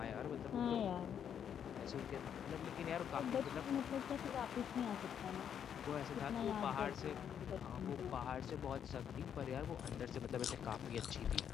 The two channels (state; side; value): quieter; right; 8.6 dB